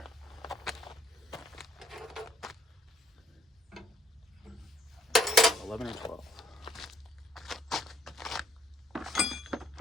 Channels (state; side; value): normal; both; correlation 0.65